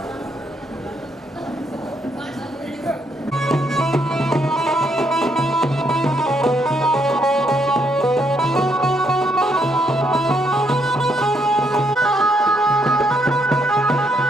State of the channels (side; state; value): both; normal; correlation 0.74